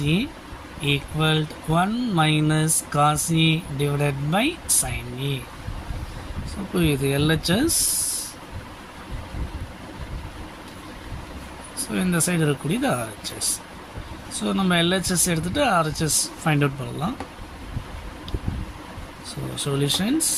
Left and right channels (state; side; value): identical; both; correlation 1.00